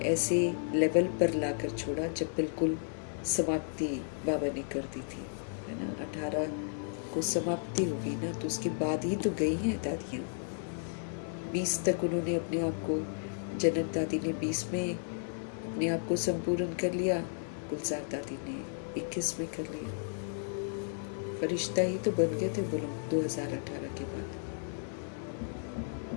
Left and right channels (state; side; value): silent; right; digital silence